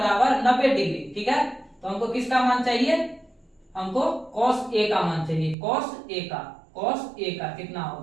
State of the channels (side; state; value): left; drops out; at 5.6 s